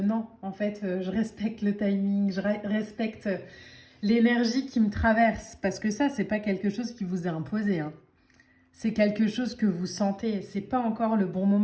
en fait, je respecte le timing, je respecte l'énergie qui me traverse, parce que ça, c'est pas quelque chose qui vous est imposé, hein. C'est quelque chose que vous sentez, c'est pas encore le bon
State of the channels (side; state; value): both; identical; correlation 1.00